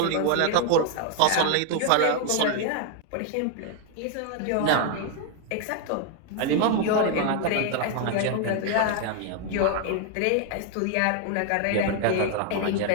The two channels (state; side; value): different; both; correlation 0.00